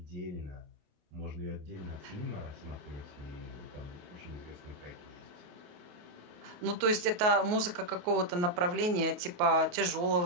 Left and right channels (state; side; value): late; left; 28 ms